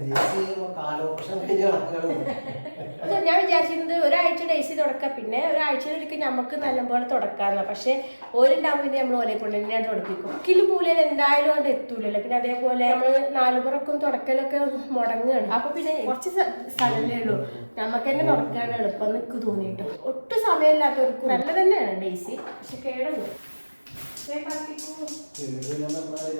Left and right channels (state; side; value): inverted; both; correlation -1.00